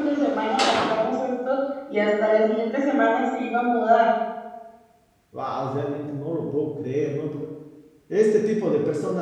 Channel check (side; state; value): both; identical; correlation 1.00